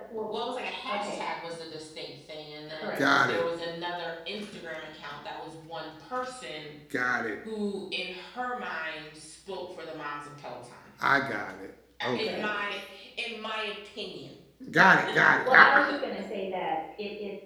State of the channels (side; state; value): both; identical; correlation 1.00